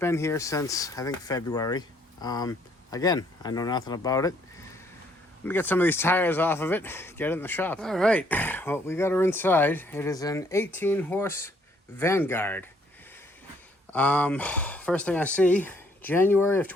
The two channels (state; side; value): normal; both; correlation 0.66